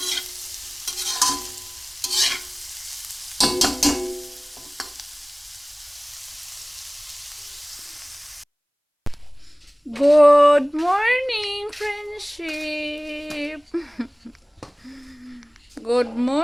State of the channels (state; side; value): identical; both; correlation 1.00